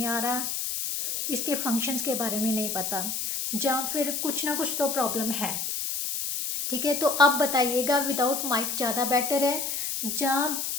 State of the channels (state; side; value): noise; left; hiss, 2 dB below the sound